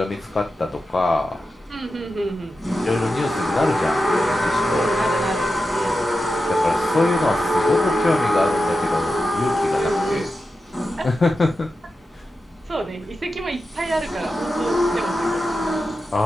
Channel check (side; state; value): both; normal; correlation 0.91